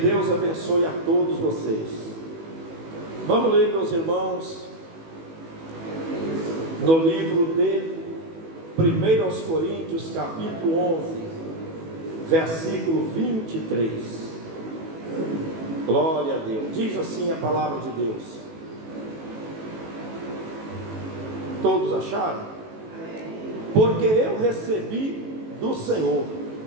abençoe a todos vocês. Vamos ler, meus irmãos, no livro de 1 Coríntios, capítulo 11, versículo 23. Glória a Deus. Diz assim a palavra de Deus. Todos acharam? Porque eu recebi do Senhor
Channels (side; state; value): left; late; 18 ms